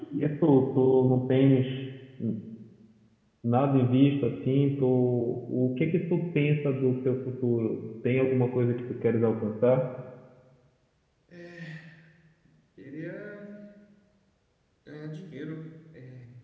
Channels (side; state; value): both; identical; correlation 1.00